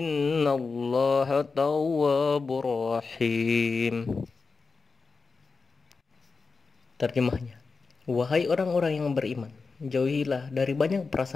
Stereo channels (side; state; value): right; quieter; 4.5 dB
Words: tawwabur rahim. Terjemahnya, wahai orang-orang yang beriman, jauhilah dari banyak